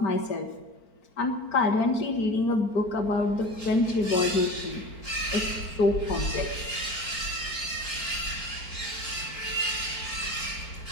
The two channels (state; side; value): late; right; 4.5 ms